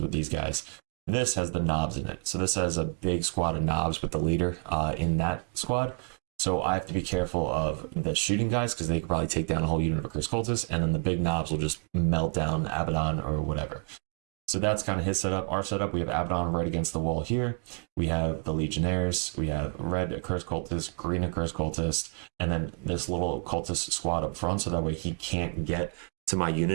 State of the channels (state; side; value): quieter; left; 37.9 dB